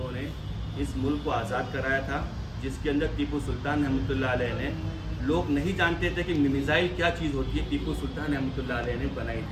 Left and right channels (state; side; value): identical; both; correlation 1.00